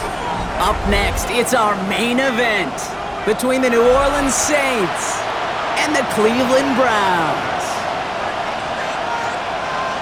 Up next, it's our main event between the New Orleans Saints and the Cleveland Browns.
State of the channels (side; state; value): both; identical; correlation 1.00